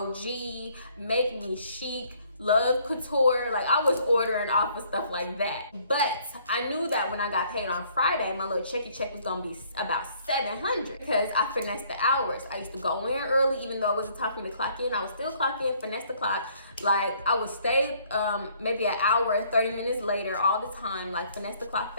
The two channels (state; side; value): inverted; both; correlation -0.62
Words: Make Me Chic, Love Couture. Like, I was ordering off of stuff like that. But I knew that when I got paid on Friday, my little check was gonna be about $700 because I finessed the hours. I used to go in early, even though it wasn't time for me to clock in. I would still clock in, finesse the clock. Like, I would stay maybe an hour, 30 minutes later all the time, like finesse the clock